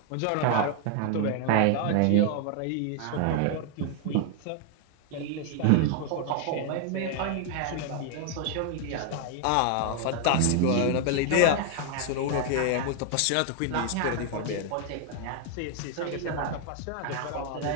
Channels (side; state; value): both; different; correlation 0.00